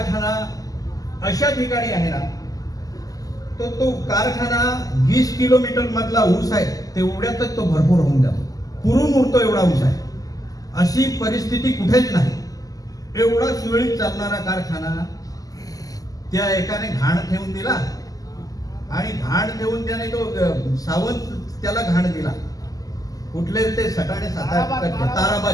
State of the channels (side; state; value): right; late; 0.17 ms